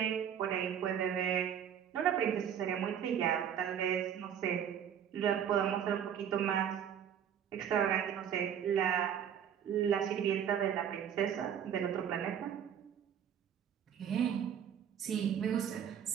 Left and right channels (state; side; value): quieter; left; 8.9 dB